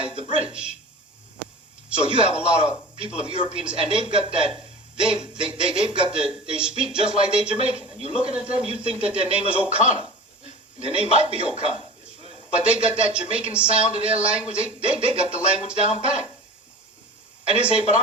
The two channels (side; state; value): both; normal; correlation 0.36